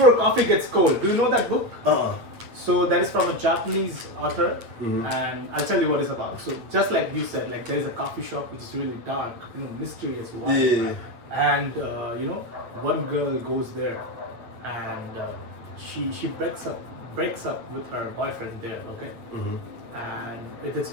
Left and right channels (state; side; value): late; left; 8.8 ms